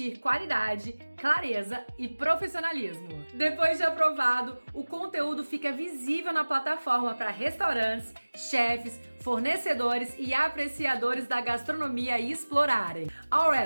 qualidade, clareza e profissionalismo. Depois de aprovado, o conteúdo fica visível na plataforma para restaurantes, chefes, fornecedores e apreciadores da gastronomia explorarem. All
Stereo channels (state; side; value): inverted; both; correlation -1.00